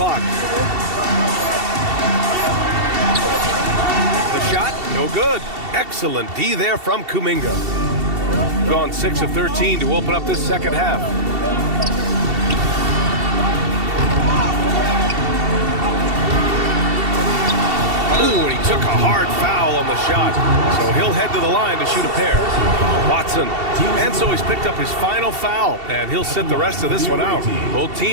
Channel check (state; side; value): late; left; 2.7 ms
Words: The shot, no good. Excellent D there from Kuminga. Gone 6 of 13 to open up this second half. Ooh, and he took a hard foul on the shot. So he'll head to the line to shoot a pair. Watson. And so he's picked up his final foul, and he'll sit the rest of this one out. Both